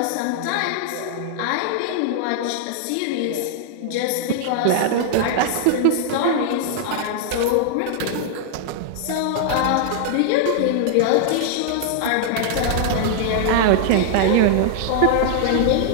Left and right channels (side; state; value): both; different; correlation -0.01